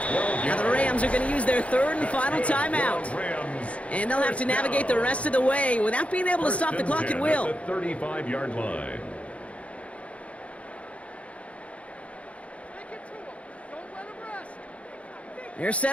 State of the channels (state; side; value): late; right; 0.064 ms